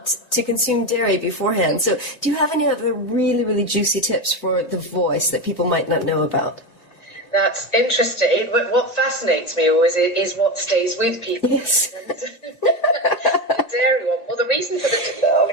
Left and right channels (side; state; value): right; late; 1.9 ms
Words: to consume dairy beforehand. So do you have any other really, really juicy tips for the voice that people might not know about? That's interesting. What fascinates me always is what stays with people. Yes. The dairy one. Well, I'll